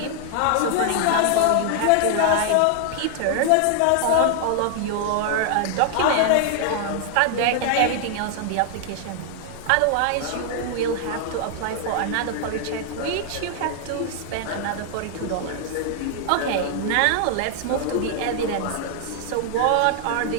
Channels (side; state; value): both; different; correlation 0.00